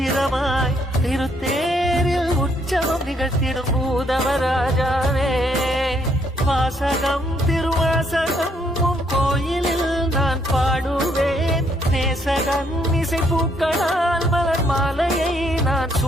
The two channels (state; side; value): normal; both; correlation 0.70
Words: திருத்தேரில் உற்சவம் நிகழ்த்திடும் பூதவராஜாவே வாசகம் திருவாசகம் உன் கோயிலில் நான் பாடுவேன் நேசகன் இசை பூக்களால் மலர் மாலையை நான்